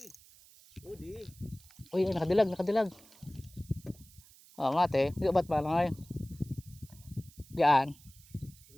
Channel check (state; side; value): noise; right; hiss, 24 dB below the sound